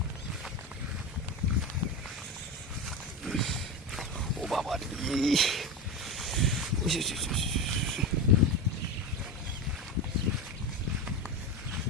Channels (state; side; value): normal; both; correlation 0.20